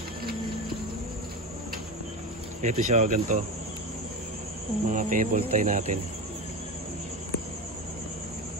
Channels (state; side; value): normal; both; correlation 0.22